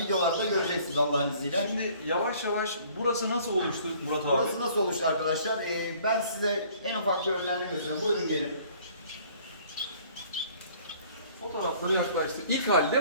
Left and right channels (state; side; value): inverted; both; correlation -0.55